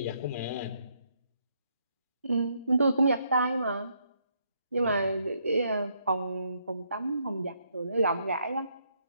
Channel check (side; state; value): both; inverted; correlation -0.74